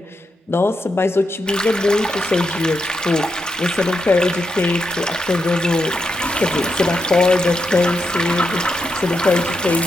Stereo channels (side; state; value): both; normal; correlation 0.84